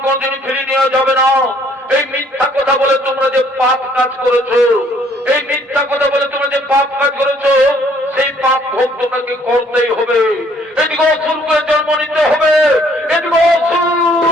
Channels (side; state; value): both; normal; correlation 0.62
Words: কোনদিনই ফিরিয়ে নেওয়া যাবে না। এই মিথ্যা কথা বলে তোমরা যে পাপ কাজ করেছো, এই মিথ্যা কথা বলে তোমরা যে পাপ কাজ করেছো, সেই পাপ ভোগ তোমাকে করতেই হবে। এদিকে অসুর করে জন্ম নিতে হবে, এদিকে অসুর